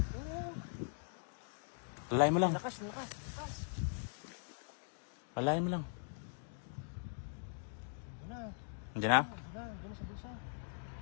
Lalayan mo lang. Lakas. Lalayan mo lang. Diyan na. Hindi na? Diyan sa bulsa.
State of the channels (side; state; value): right; silent; digital silence